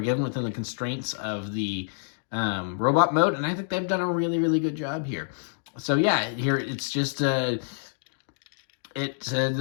given within the constraints of the robot mode, and I think they've done a really good job here. So yeah, here it's just you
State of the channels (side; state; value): right; silent; digital silence